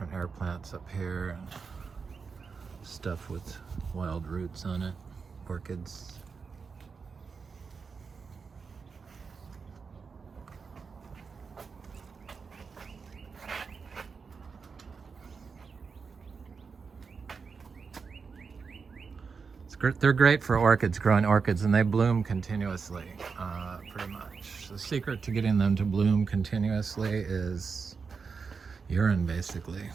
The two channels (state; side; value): quieter; left; 5.3 dB